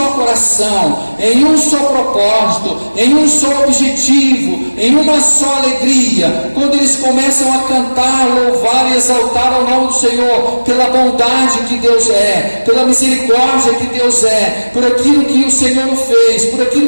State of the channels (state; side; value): inverted; both; correlation -1.00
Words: coração, em um só propósito, em um só objetivo, em uma só alegria. Quando eles começam a cantar, louvar e exaltar o nome do Senhor, pela bondade que Deus é, pela misericórdia que Deus é, por aquilo que o Senhor fez, por aquilo